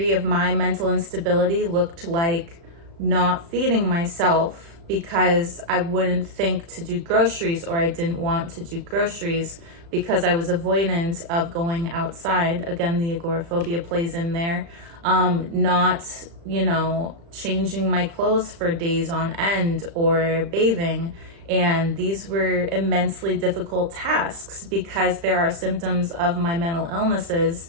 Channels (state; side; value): late; left; 35 ms